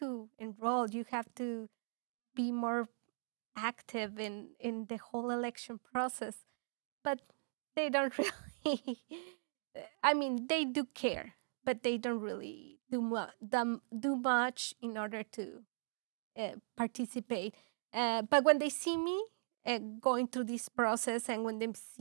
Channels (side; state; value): left; silent; digital silence